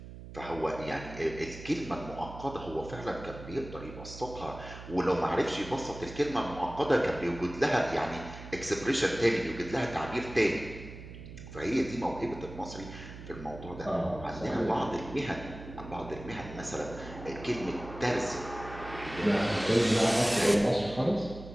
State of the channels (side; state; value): right; noise; hum, 13 dB below the sound